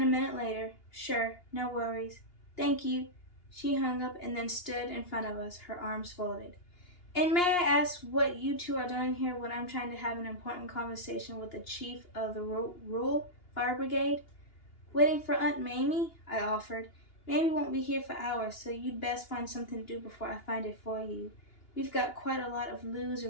a minute later, "Sure, no worries. Thank you." She hung up and then stood in front of us, her arms folded. "And may I ask what you two are doing here when I'm trying to have an important conversation with the chief of the rural fire brigade?" "Waiting for Aunt Mamie," I offered. "Mamie won't be here for hours, so you'd best find something to do before I find it for you. We've got quite a lot of loos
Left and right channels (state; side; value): late; right; 2.8 ms